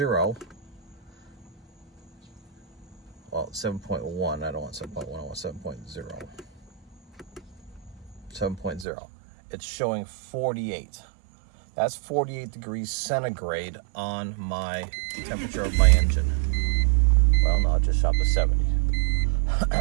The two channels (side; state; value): left; drops out; at 8.8 s